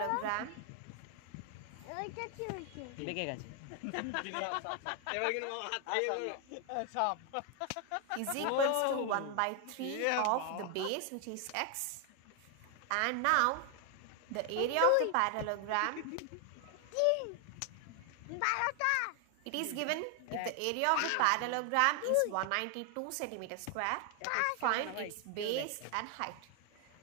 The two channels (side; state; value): both; different; correlation 0.00